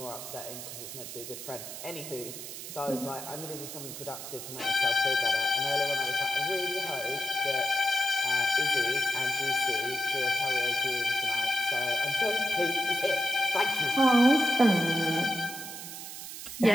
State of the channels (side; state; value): right; noise; hiss, 10 dB below the sound